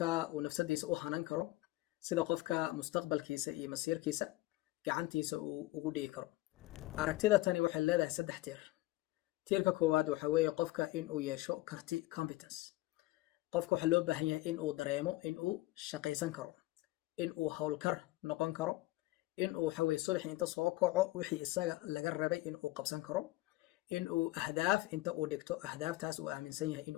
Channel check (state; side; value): quieter; right; 18.5 dB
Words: uu nafsadiisa u hanan karo, sida qofka mustaqbalkiisa iyo masiirkiisa gacantiisa uu ugu dhigi karo. Aragtida tani waxay leedahay saddex tiir. Tiirka koowaad waxa weeye qofka in uu yeesho karti competence. Qofka waxa loo baahan yahay in uu dareemo in uu shaqaysan karo, in uu hawlkar noqon karo, in uu waxa weeye subax inta soo kaco wixii isaga laga rabay in uu qabsan karo, in uu ahdaaf inta uu dhigto ahdaaftaas uu aaminsan yahay in